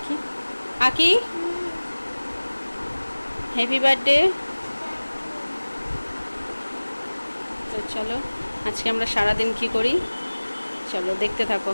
আকি, হ্যাপি বার্থডে। তো চলো, আজকে আমরা সারাদিন কি করি চলো দেখতে থাকো।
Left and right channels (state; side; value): inverted; both; correlation -1.00